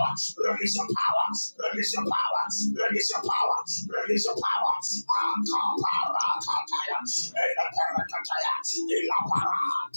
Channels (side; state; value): both; inverted; correlation -1.00